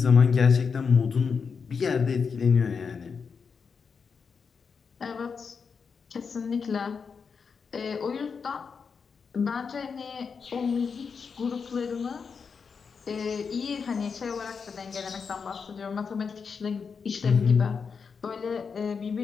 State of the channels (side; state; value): right; quieter; 5.7 dB